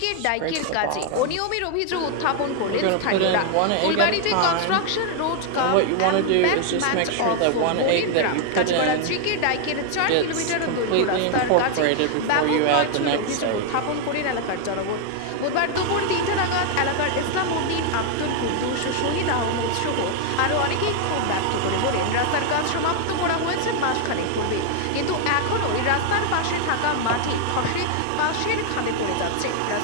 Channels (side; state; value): both; different; correlation 0.00